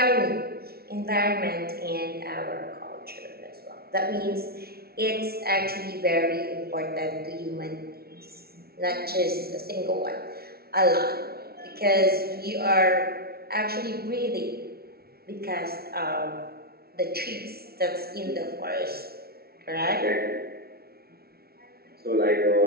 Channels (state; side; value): late; left; 0.45 ms